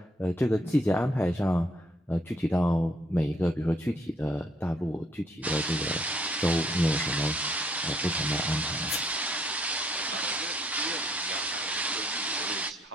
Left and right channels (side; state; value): both; normal; correlation 0.68